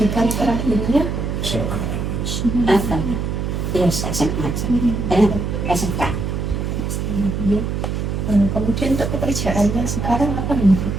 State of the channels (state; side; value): noise; right; hum, 2 dB below the sound